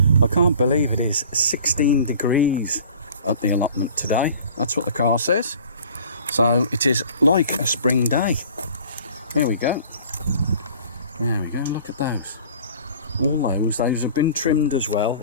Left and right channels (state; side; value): inverted; both; correlation -0.47